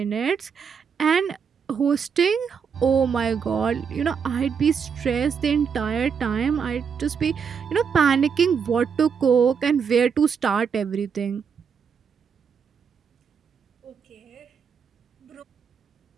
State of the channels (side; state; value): left; quieter; 6.6 dB